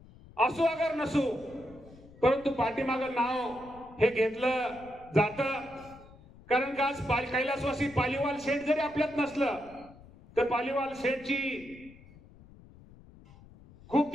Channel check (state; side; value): noise; left; rumble, 22 dB below the sound